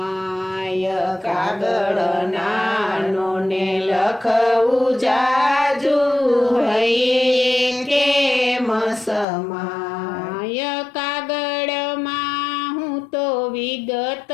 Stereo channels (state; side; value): drops out; right; at 9.2 s